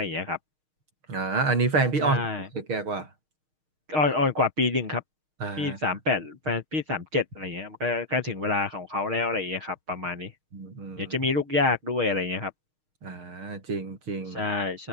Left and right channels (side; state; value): left; late; 6.5 ms